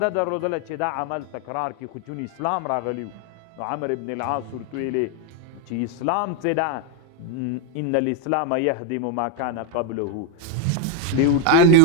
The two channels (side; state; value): both; different; correlation 0.01